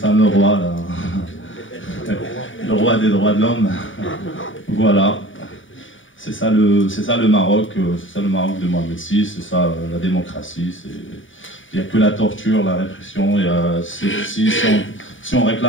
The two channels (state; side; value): late; right; 0.57 ms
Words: roi, là. Le roi des droits de l'homme. Voilà. C'est ça le Maroc, c'est ça le Maroc de Mohamed VI, c'est ça la démocratie. Il n'y a que la torture, la répression. Si on